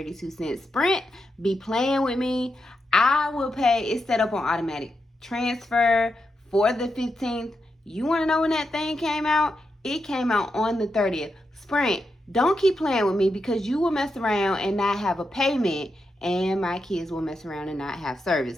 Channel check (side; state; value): both; normal; correlation 0.86